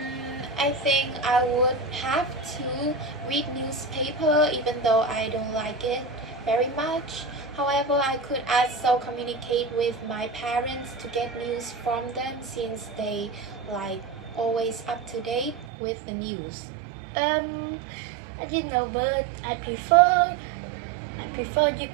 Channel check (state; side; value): drops out; left; at 15.7 s